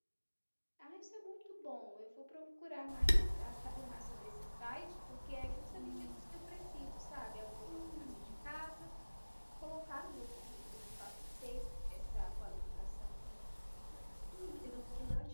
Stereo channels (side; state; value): both; inverted; correlation -1.00